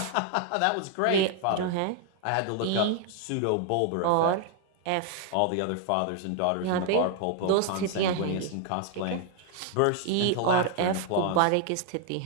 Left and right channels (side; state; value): both; different; correlation 0.00